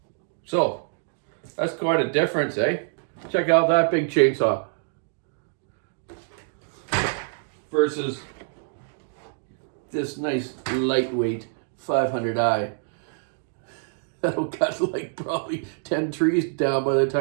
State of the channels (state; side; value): silent; left; digital silence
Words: so that's quite a difference, eh? Check out that big chainsaw versus this nice lightweight 500i. That'll cut like probably 10 trees down by the